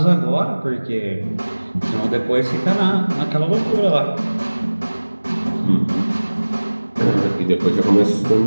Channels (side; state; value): both; inverted; correlation -1.00